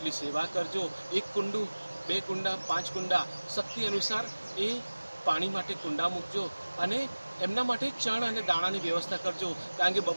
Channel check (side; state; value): both; inverted; correlation -1.00